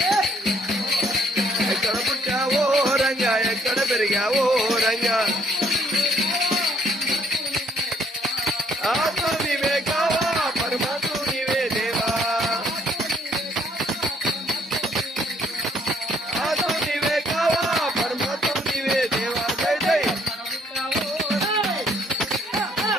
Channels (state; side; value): normal; both; correlation 0.66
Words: ఎక్కడ పుట్టావో రంగా ఎక్కడ పెరిగావో రంగా ఆత్మ నీవే కావా పరమాత్మ నీవే దేవా ఆత్మ నీవే కావా పరమాత్మ నీవే దేవా జై జై